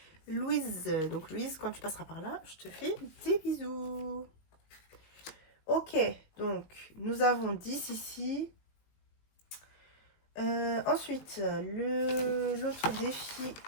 Louise. Donc Louise, quand tu passeras par là, je te fais des bisous. Ok, donc nous avons 10 ici. Ensuite, l'autre défi,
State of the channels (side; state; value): right; late; 19 ms